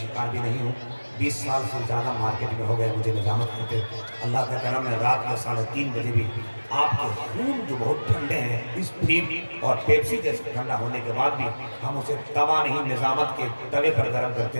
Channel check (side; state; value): both; inverted; correlation -1.00